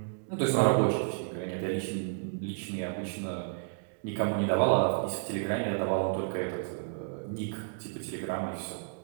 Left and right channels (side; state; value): left; silent; digital silence